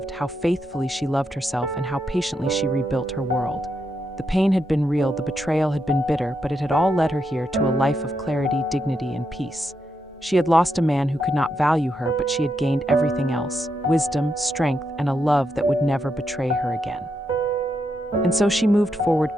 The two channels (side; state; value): both; normal; correlation 0.82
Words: how faithfully she loved herself, and how patiently she rebuilt her world. The pain had been real, the betrayal had been bitter, but it had all led her here to a life of clarity, dignity, and peace. She had lost a man who could not value her, but she had gained everything else: wisdom, strength, and a love that would never betray her again. And so she moved forward